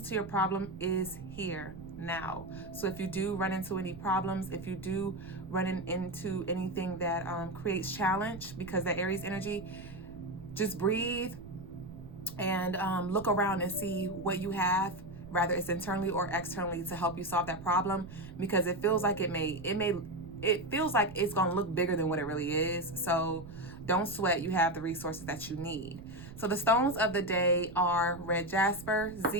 to your problem is here now. So if you do run into any problems, if you do run into anything that creates challenge because that Aries energy, just breathe and look around and see what you have, whether it's internally or externally, to help you solve that problem, because it feels like it feels like it's going to look bigger than what it really is. So don't sweat. You have the resources that you need. So the stones of the day are red jasper,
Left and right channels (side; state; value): right; noise; rumble, 14 dB below the sound